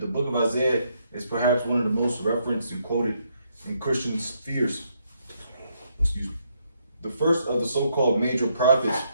the book of Isaiah is perhaps one of the most referenced and quoted in Christian spheres. Excuse me. The first of the so-called major prophets,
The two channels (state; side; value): inverted; both; correlation -0.75